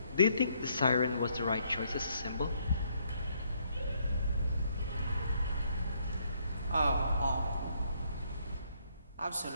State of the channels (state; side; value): inverted; both; correlation -0.71